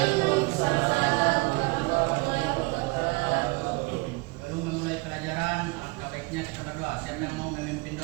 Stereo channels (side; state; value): left; quieter; 26.3 dB